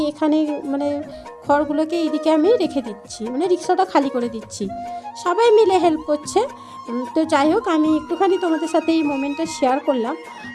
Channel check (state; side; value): identical; both; correlation 1.00